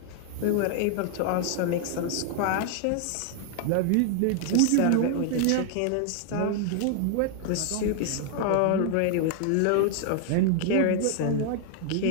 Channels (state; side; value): different; both; correlation 0.00